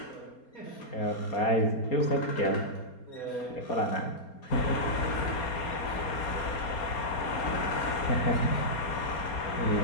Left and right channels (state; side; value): late; right; 4.3 ms